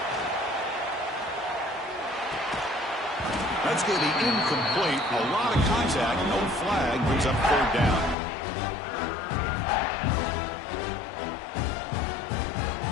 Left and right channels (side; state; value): right; drops out; at 8.2 s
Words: That's going to be incomplete. A lot of contact. No flag. Brings up 3rd down.